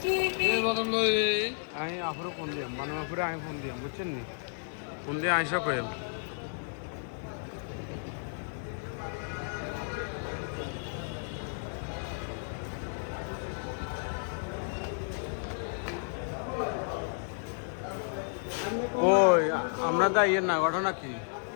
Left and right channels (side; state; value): right; silent; 55 dB below the other